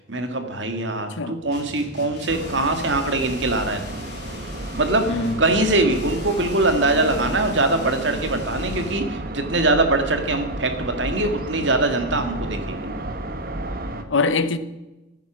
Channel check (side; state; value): both; normal; correlation 0.00